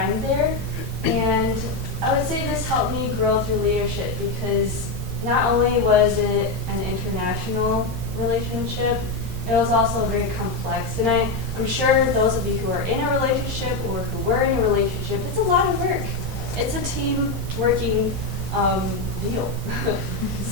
there. And I would say this helped me grow through leadership, because not only was it an international relationship, it was also very complex. And I'm sure those of you who are in a relationship or who were in a relationship, it's a lot of work. It's a team working deal.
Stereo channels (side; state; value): right; quieter; 3.2 dB